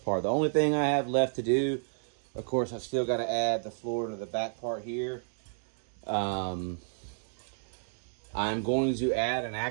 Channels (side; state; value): left; silent; digital silence